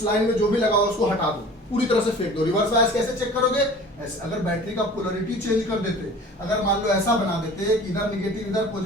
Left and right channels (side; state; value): both; normal; correlation 0.44